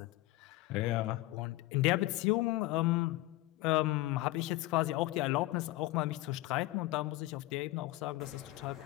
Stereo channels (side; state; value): right; quieter; 18.2 dB